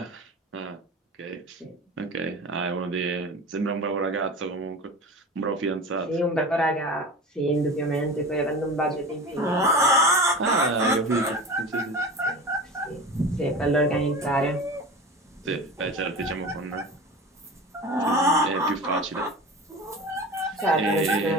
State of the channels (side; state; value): both; normal; correlation 0.33